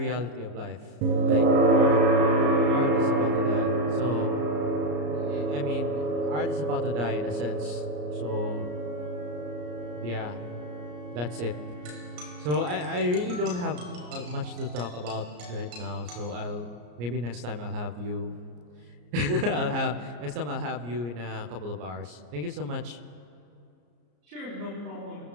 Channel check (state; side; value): late; left; 34 ms